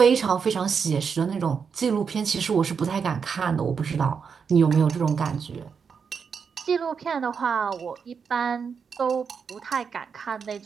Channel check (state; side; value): quieter; left; 6.2 dB